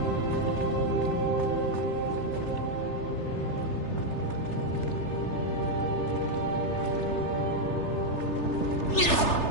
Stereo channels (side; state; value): right; late; 3.3 ms